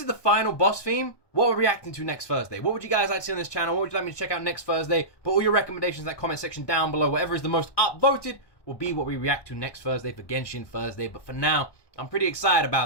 the final boss theme, what we're reacting to next Thursday? What would you guys like to see on this channel? What would you like me to check out next Thursday? Put all your recommendations in that comment section down below. Whatever is the most upvoted will be what we react to next Thursday for Genshin Thursday. But for now, I'm pretty excited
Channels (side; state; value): right; late; 1.2 ms